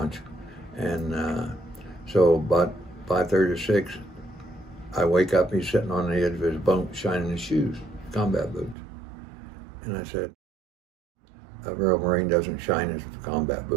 and so about 5:30 or 6, I wake up, he's sitting on the edge of his bunk shining his shoes, combat boots. And I said, a real Marine doesn't shine his combat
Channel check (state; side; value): drops out; left; at 8.8 s